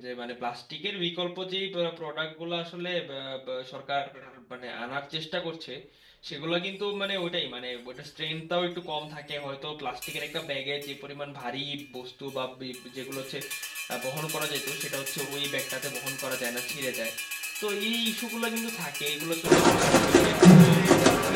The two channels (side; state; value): both; identical; correlation 1.00